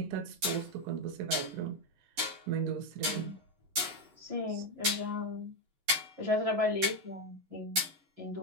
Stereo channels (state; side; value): late; left; 11 ms